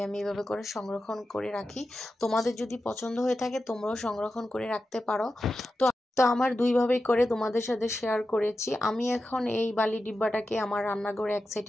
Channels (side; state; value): both; normal; correlation 0.91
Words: আমি এভাবে করে সংরক্ষণ করে রাখি। তোমাদের যদি পছন্দ হয়ে থাকে তোমরাও সংরক্ষণ করে রাখতে পারো। তো তো আমার দুইভাবেই করে তোমাদের সাথে শেয়ার করেছি। আমি এখন এই বালি ডিব্বাটাকে আমার রান্নাঘরে এক